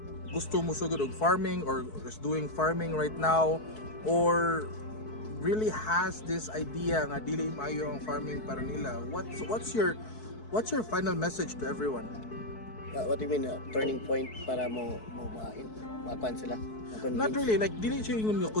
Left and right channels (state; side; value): late; right; 4.6 ms